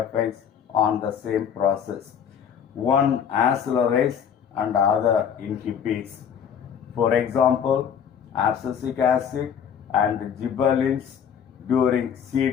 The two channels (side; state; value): right; quieter; 8.0 dB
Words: on the same process. One accelerates and the other inhibits. For example, abscisic acid and gibberellins during